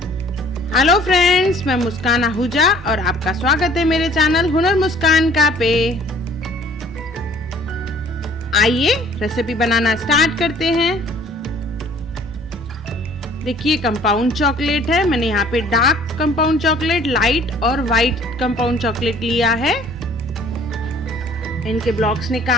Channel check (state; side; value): normal; both; correlation 0.55